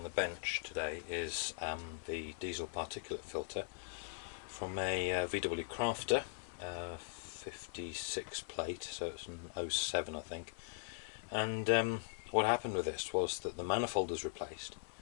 the bench today is the diesel particulate filter from a VW Crafter 56 plate, so it's an 07 I think. And what happened with this was that the manifold was replaced,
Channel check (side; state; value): right; silent; digital silence